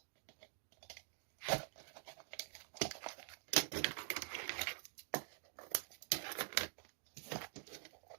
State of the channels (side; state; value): left; silent; digital silence